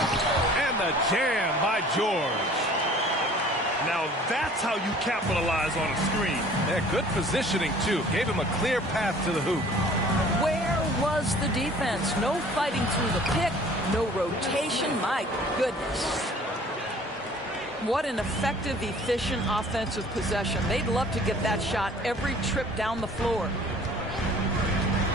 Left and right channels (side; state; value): both; normal; correlation 0.50